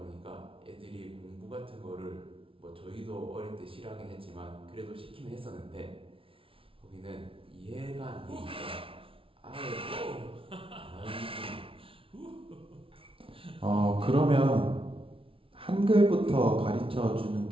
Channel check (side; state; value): left; late; 0.26 ms